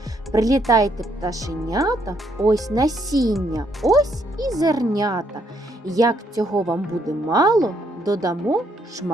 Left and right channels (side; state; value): both; normal; correlation 0.72